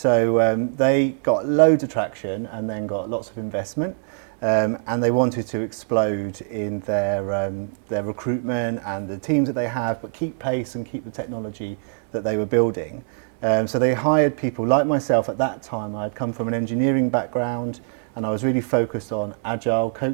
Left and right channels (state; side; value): silent; left; digital silence